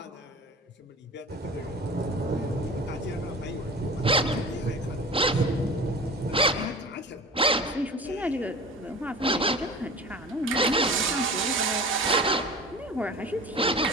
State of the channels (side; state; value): both; normal; correlation 0.37